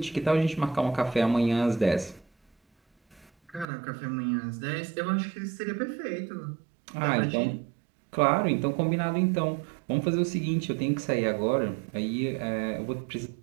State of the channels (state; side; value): drops out; left; at 3.7 s